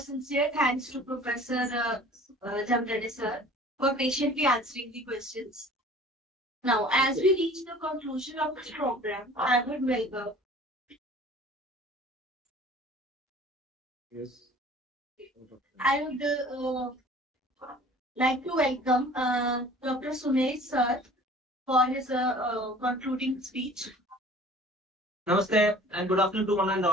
thanks to Professor Jamdade sir for patiently answering the questions. Now, as we reach the conclusion of this program, I would welcome. Yes. I would like to welcome Dr. Sumesh sir for his concluding speech. Namaste and good afternoon to one and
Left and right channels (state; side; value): normal; both; correlation 0.48